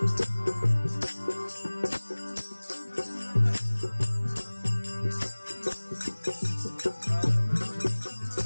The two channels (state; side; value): inverted; both; correlation -1.00